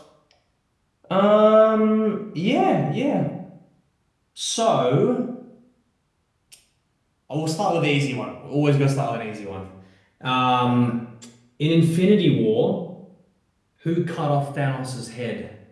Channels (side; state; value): both; identical; correlation 1.00